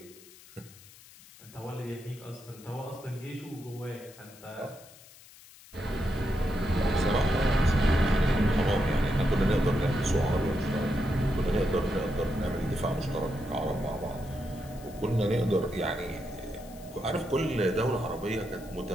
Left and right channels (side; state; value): left; noise; hiss, 22 dB below the sound